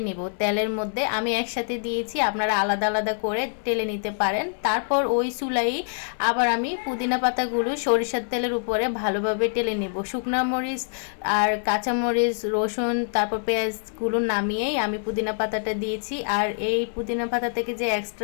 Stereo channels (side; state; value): right; silent; digital silence